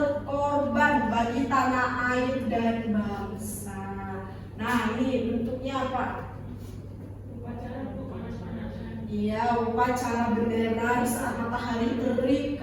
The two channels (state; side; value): identical; both; correlation 1.00